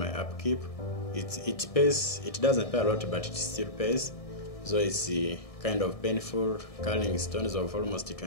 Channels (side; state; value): right; late; 1.6 ms